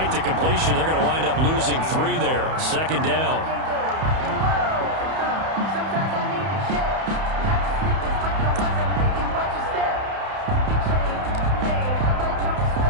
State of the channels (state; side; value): late; left; 31 ms